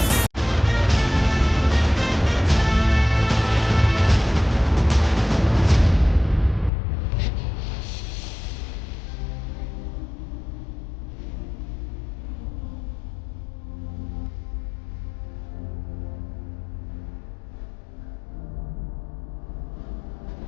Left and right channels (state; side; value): drops out; right; at 6.7 s